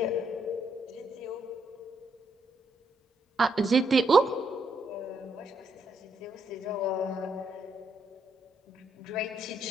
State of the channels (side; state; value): both; normal; correlation 0.76